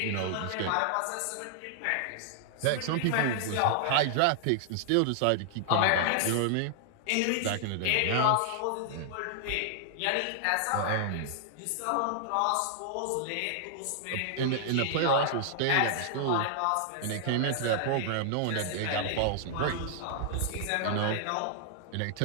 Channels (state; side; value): different; both; correlation -0.01